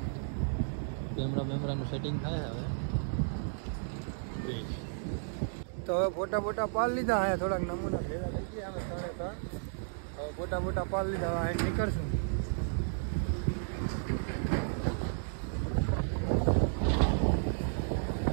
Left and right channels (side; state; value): left; silent; digital silence